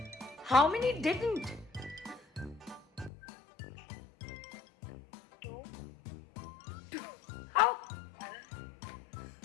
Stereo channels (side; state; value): right; drops out; at 3.1 s